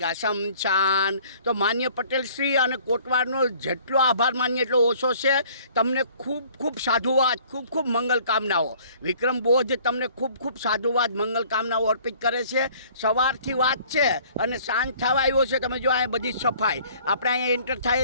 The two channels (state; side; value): inverted; both; correlation -0.54